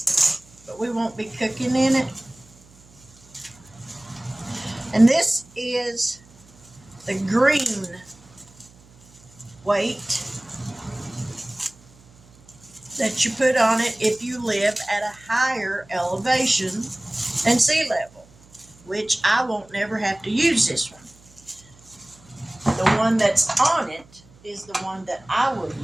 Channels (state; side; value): noise; right; hum, 26 dB below the sound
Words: But we won't be cooking in it. And this is the green weight. that you put on it if you live at a higher elevation than sea level, which I won't never have to use this one. The one that's on it is the one that I will